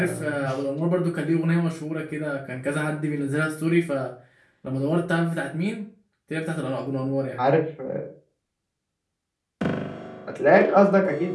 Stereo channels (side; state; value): both; identical; correlation 1.00